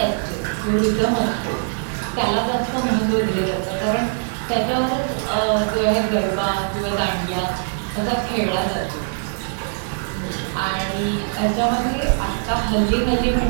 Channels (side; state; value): left; silent; digital silence